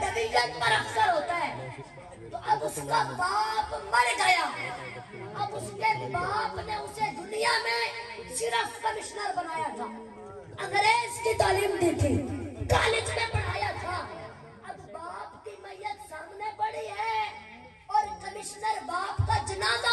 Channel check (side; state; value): both; identical; correlation 1.00